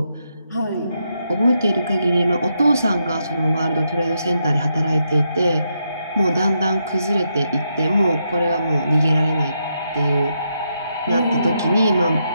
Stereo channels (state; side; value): inverted; both; correlation -0.81